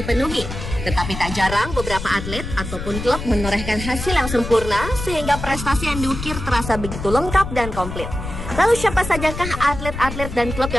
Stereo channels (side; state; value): left; noise; rumble, 7 dB below the sound